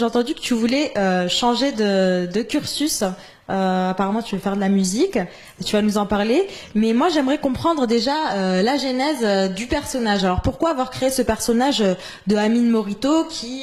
entendu que tu voulais changer de cursus. Apparemment, tu veux faire de la musique. Tu vas nous en parler. Mais moi, j'aimerais comprendre déjà la genèse du personnage. Alors, pourquoi avoir créé ce personnage de Amine Morito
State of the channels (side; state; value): both; identical; correlation 1.00